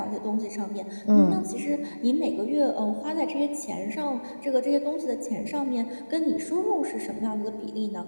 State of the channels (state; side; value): inverted; both; correlation -1.00